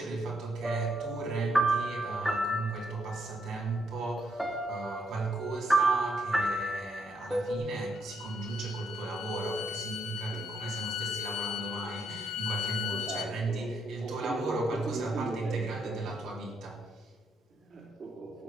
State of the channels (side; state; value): both; normal; correlation 0.76